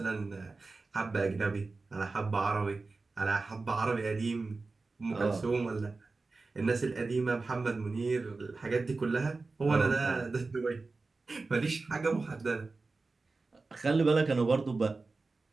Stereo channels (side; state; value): left; quieter; 3.8 dB